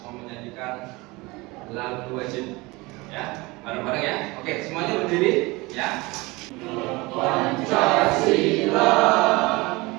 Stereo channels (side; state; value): left; quieter; 23.4 dB